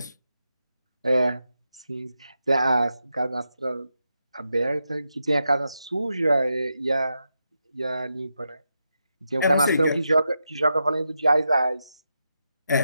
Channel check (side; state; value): both; inverted; correlation -0.86